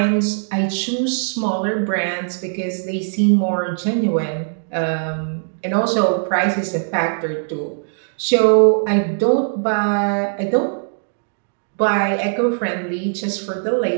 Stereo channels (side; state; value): left; silent; digital silence